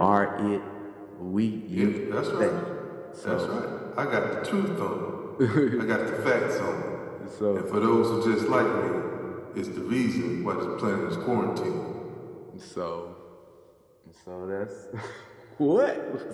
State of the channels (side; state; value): both; identical; correlation 1.00